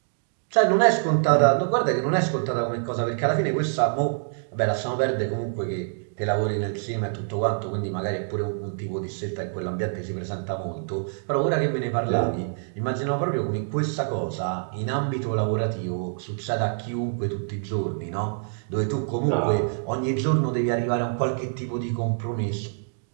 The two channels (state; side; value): silent; left; digital silence